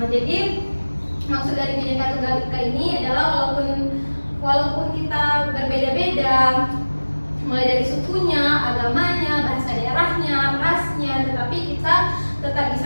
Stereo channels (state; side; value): inverted; both; correlation -1.00